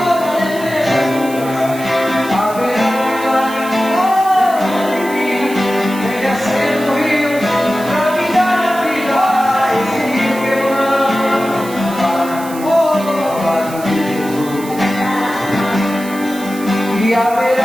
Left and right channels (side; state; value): right; noise; hiss, 16 dB below the sound